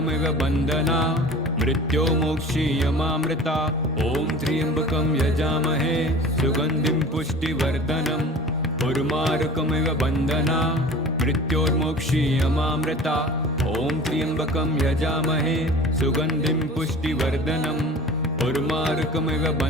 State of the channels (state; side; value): normal; both; correlation 0.40